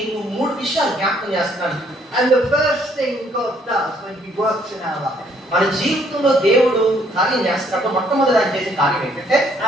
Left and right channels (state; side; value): normal; both; correlation 0.66